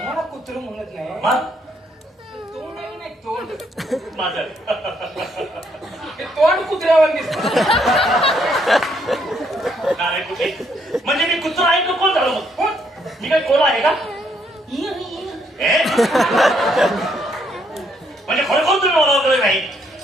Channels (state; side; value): normal; both; correlation 0.71